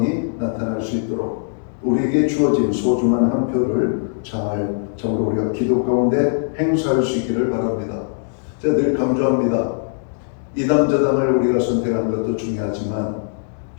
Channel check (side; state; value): right; silent; digital silence